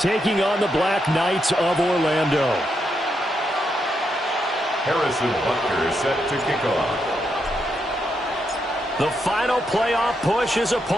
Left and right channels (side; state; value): both; normal; correlation 0.81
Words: on the Black Knights of Orlando. Harrison Butker is set to kick off. The final playoff push is